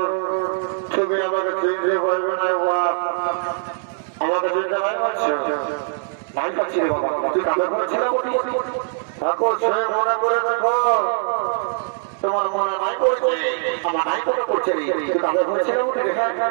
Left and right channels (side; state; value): left; silent; digital silence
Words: তুমি আমাকে চিনতে পারবে না আমাকে চিনতে নাই পাচ্ছ নাই পাচ্ছি রে বাবা তুই কাকে ঘুরছিলাম বলি ঠাকুর সে মনে করে দেখো তোমার মনে নাই করছে আমার নাই করে করছে তুই কাকে ঘুরছিলাম বলি